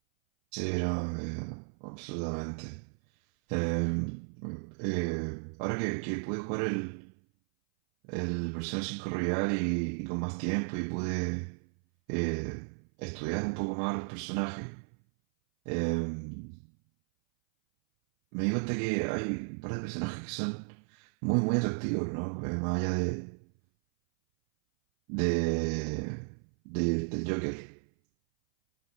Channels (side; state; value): left; silent; 55 dB below the other